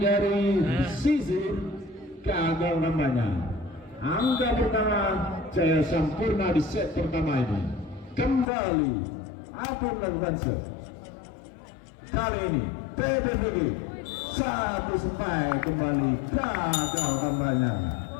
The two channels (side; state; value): right; drops out; at 8.5 s